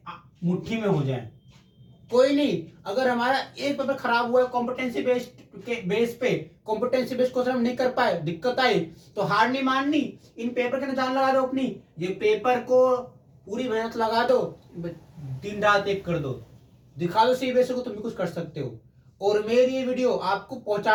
मुट्ठी में हो जाए। कोई नहीं, अगर हमारा एक पेपर खराब हुआ है कॉम्पिटेंसी बेस पे, कॉम्पिटेंसी बेस्ड क्वेश्चन हम नहीं कर पाए, दिक्कत आई, तो हार नहीं माननी, इन पेपर के अंदर जान लगा दो अपनी। ये पेपर को पूरी मेहनत लगा दो, दिन रात एक कर दो, दिखा दो सीबीएसई को तुम भी कुछ कर सकते हो। और मेरी ये वीडियो आपको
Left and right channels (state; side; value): identical; both; correlation 1.00